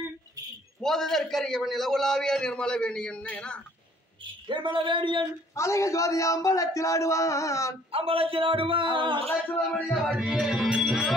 போதற்கரியவன் இலகுலாவிய நிர்மல வேணியன் நிர்மல வேணியன் அழக ஜோதி அம்பலத்தில் ஆடுவான்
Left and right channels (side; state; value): both; normal; correlation 0.59